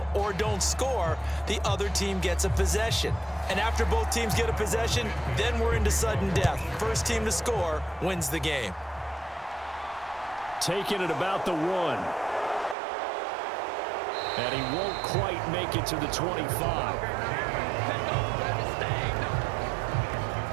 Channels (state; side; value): drops out; left; at 12.8 s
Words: or don't score, the other team gets a possession. And after both teams get a possession, then we're into sudden death. First team to score wins the game. Taking it about the 1. And he won't quite make it to the 25.